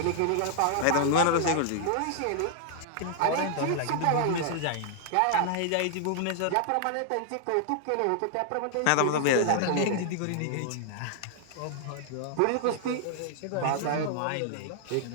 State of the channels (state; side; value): different; both; correlation -0.01